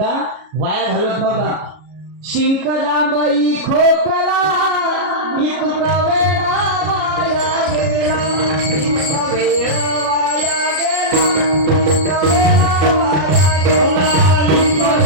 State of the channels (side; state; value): left; late; 33 ms